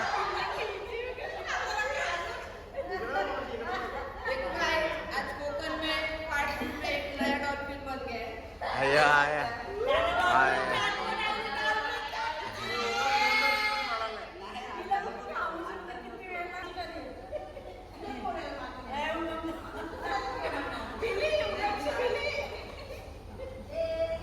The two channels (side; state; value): both; identical; correlation 1.00